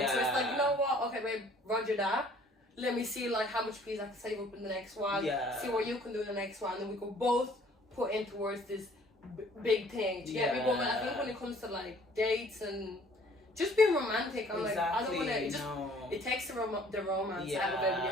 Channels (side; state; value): both; normal; correlation 0.56